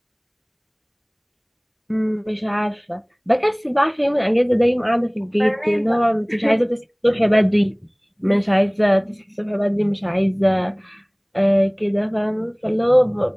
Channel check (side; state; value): both; identical; correlation 1.00